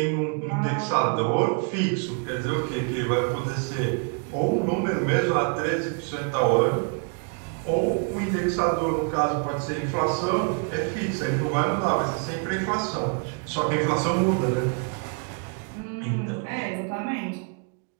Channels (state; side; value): quieter; left; 38.2 dB